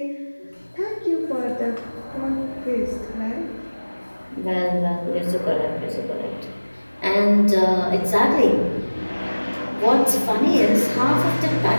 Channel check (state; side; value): inverted; both; correlation -1.00